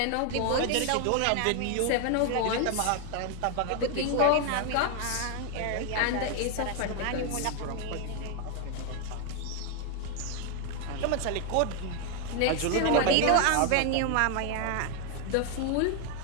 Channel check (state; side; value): different; both; correlation 0.01